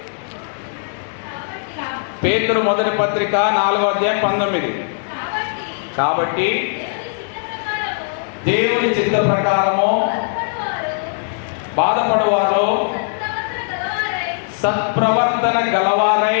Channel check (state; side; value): silent; right; digital silence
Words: పేతురు మొదటి పత్రిక 4వ అధ్యాయం 19. కాబట్టి దేవుని చిత్త ప్రకారము బాధపడువారు సత్ప్రవర్తన గలవారై